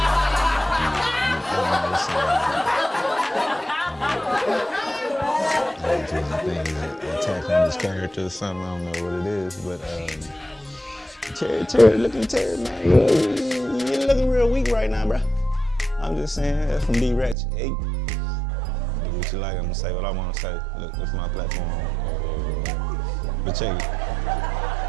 I think he's an attack on his character or something. I don't know what it is, but Terry, man, you're looking real weak right now, bro. I'm just saying, that's from D-Ratchet. Hey, do what you like. I'm gonna say what I want to say. Look, it's my platform. But check it.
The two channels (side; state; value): left; drops out; at 17.4 s